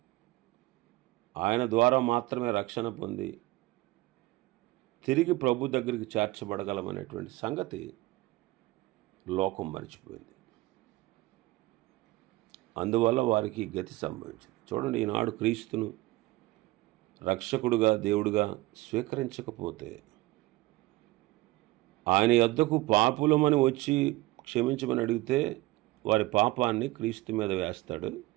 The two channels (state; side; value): quieter; left; 19.4 dB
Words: ఆయన ద్వారా మాత్రమే రక్షణ పొంది తిరిగి ప్రభు దగ్గరికి చేర్చబడగలమనేటువంటి సంగతి లోకం మర్చిపోయింది. అందువల్ల వారికి గతి సంభవించింది. చూడండి, ఈనాడు క్రీస్తును రక్షకుడుగా దేవుడుగా స్వీకరించకపోతే, ఆయన యొద్దకు పాపులమని వచ్చి క్షమించమని అడిగితే వారి పాపాన్ని క్రీస్తు మీద వేస్తాడు,